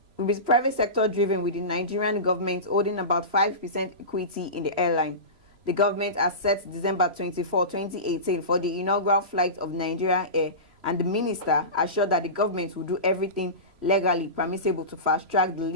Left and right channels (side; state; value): left; late; 3.0 ms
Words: driven, with the Nigerian government holding about 5% equity in the airline. The government has set December 24, 2018 for the inaugural flight of Nigerian Air, and the minister assured that the government will do everything legally permissible to fast-track the